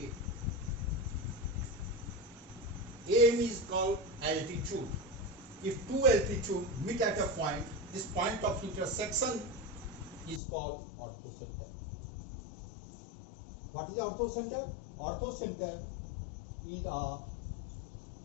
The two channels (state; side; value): drops out; right; at 10.4 s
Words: A. AM is called altitude. If two altitudes meet at a point, this point of intersection is called orthocenter. What is orthocenter? Orthocenter is a